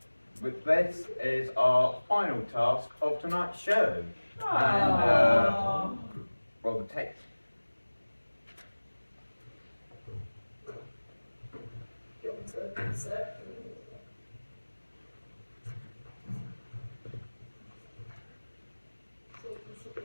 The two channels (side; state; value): both; inverted; correlation -1.00